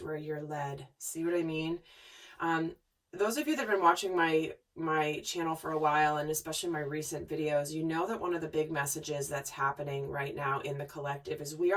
where you're led. See what I mean? Those of you that have been watching my channel for a while, and especially my recent videos, you know that one of the big messages that's happening right now in the collective is we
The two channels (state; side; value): identical; both; correlation 1.00